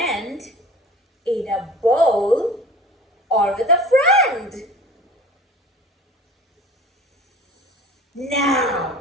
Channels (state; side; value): normal; both; correlation 0.42